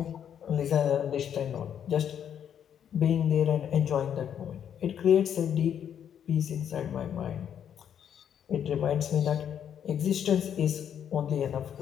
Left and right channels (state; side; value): quieter; right; 9.0 dB